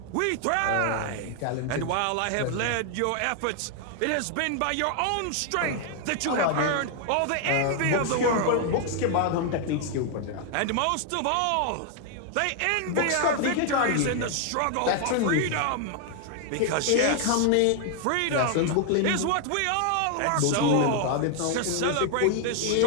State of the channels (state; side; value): different; both; correlation 0.00